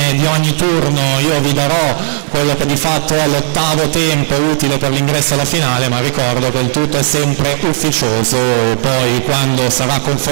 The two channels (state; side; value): silent; left; digital silence